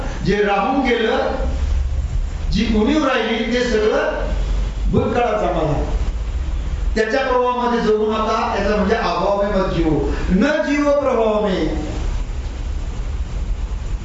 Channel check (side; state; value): both; identical; correlation 1.00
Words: जे राहून गेलं, जी उणीव राहिली ते सगळं भूतकाळाचा मला, त्याच्या प्रभावामध्ये जगू नका. याचा म्हणजे अभाव में मत जीवो. न जीवो प्रभाव में.